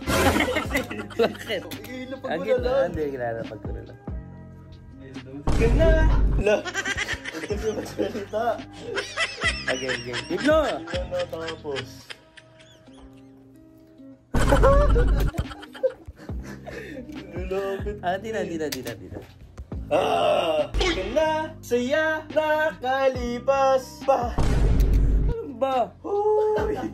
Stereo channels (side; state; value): both; identical; correlation 1.00